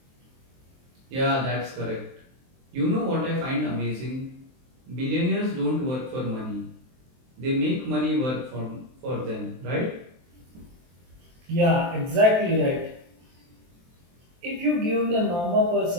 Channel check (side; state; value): left; late; 23 ms